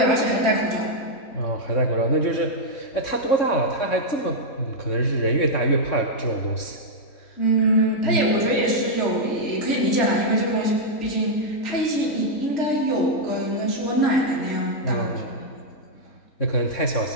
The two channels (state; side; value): late; right; 3.6 ms